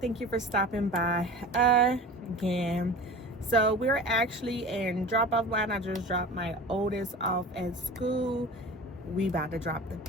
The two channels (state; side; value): normal; both; correlation 0.36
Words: you for stopping by again. So we're actually in drop-off line. I just dropped my oldest off at school. We about to drop the